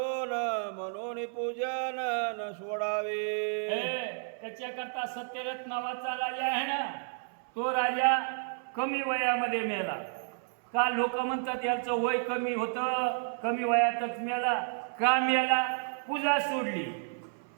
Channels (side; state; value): left; silent; 56 dB below the other